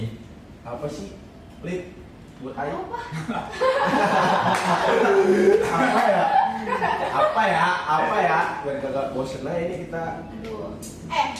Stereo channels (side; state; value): both; identical; correlation 1.00